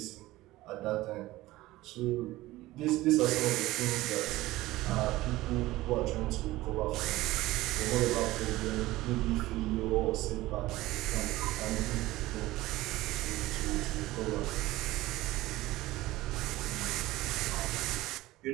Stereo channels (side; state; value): left; quieter; 17.8 dB